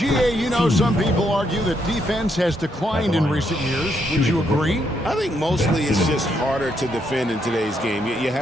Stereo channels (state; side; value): normal; both; correlation 0.76